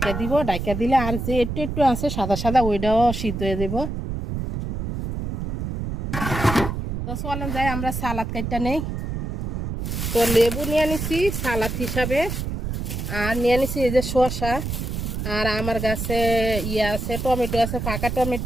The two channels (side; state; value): right; noise; rumble, 4 dB below the sound